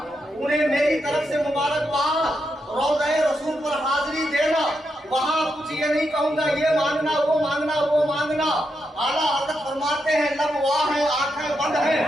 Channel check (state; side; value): normal; both; correlation 0.83